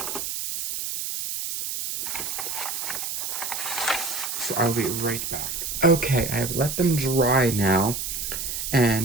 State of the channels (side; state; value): right; noise; hiss, 4 dB below the sound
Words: So I'll be right back. Okay, I have let them dry now.